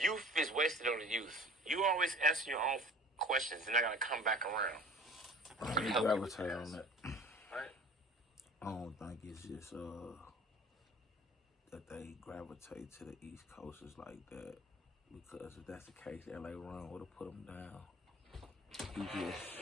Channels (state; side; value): normal; both; correlation 0.44